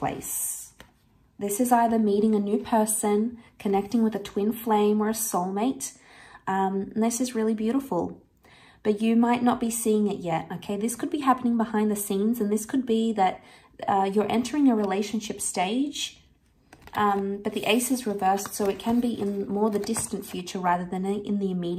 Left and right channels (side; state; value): both; identical; correlation 1.00